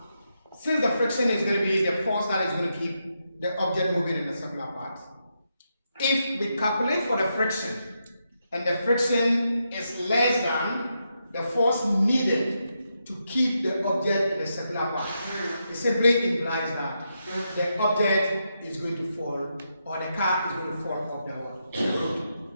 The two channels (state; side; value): inverted; both; correlation -0.83